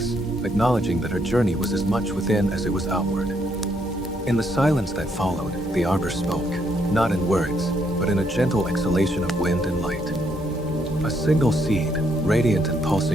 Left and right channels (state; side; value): normal; both; correlation 0.74